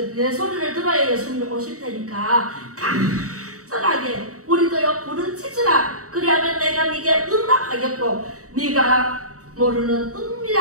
내 소리를 들어야 예수님이 오실 테니까 간절하게 우리도요 부르짖으라. 그리하면 내가 네게 응답하겠고 네가 모르는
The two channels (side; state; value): left; late; 0.66 ms